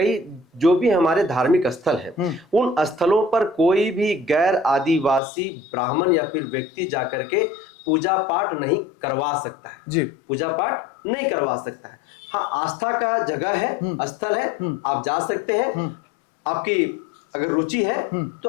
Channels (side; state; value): right; drops out; at 5.2 s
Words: जो भी हमारे धार्मिक स्थल हैं, उन स्थलों पर कोई भी गैर आदिवासी ब्राह्मण या फिर व्यक्ति जाकर के पूजा पाठ नहीं करवा सकता है। जी पूजा पाठ नहीं करवा सकता है। हाँ, आस्था का जगह है, स्थल है, आप जा सकते हैं। आपकी अगर रुचि है तो